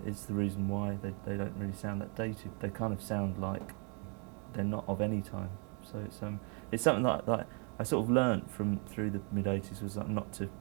is the reason why they don't really sound that dated. They kind of sound like they're not of any time. So it's something that I sort of learnt through the mid-80s, was not to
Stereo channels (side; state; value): left; quieter; 37.4 dB